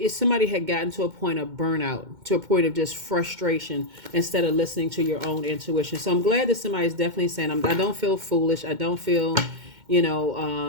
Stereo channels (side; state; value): left; late; 2.1 ms